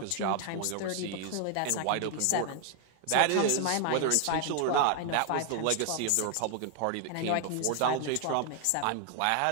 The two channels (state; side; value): different; both; correlation 0.00